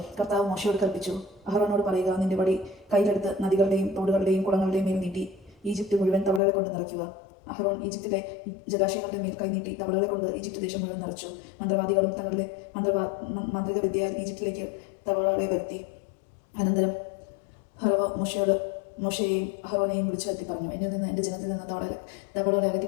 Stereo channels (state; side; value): drops out; right; at 6.4 s